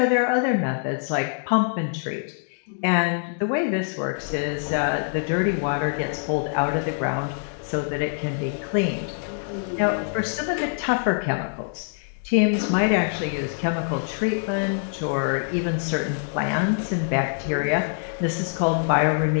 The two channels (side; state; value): right; silent; digital silence